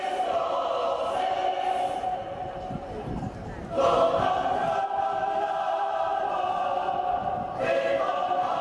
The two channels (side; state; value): both; identical; correlation 1.00